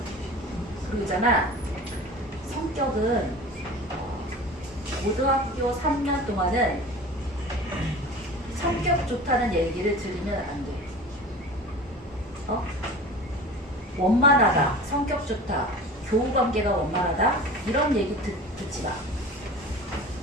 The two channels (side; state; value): both; normal; correlation 0.37